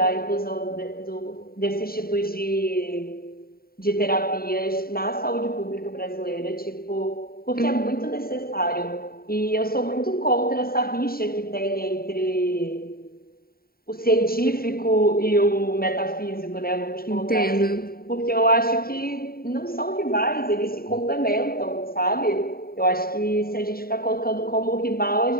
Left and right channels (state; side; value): late; right; 0.43 ms